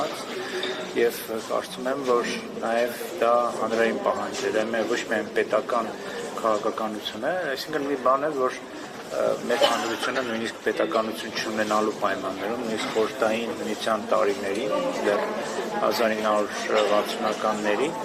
եւ կարծում եմ, որ նաեւ դա հանրային պահանջ է, դա ոչ միայն պետական քաղաքականություն է, այսինքն մի բան է, որ մեր հանրությունը նույնիսկ պետականություն չունենալու պայմաններում, նույնիսկ խորհրդային միության տարիներին, դեռ 1960-ականների,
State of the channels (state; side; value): identical; both; correlation 1.00